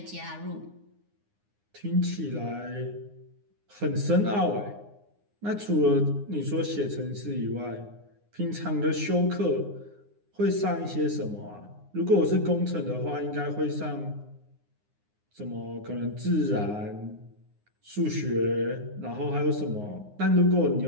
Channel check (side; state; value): left; late; 9.7 ms